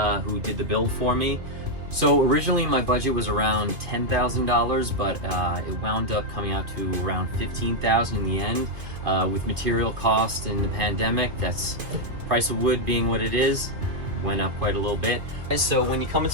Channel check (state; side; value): late; left; 2.5 ms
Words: who did the build for me. So originally my budget was around $10,000, but it wound up coming out to around $15,000 in the end. With material cost and the pandemic, that's price of wood being what it is, went up quite a little bit. So when you come